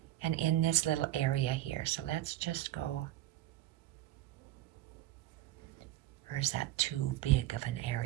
and in this little area here. So let's just go. Or is that too big of an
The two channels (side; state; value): left; quieter; 14.5 dB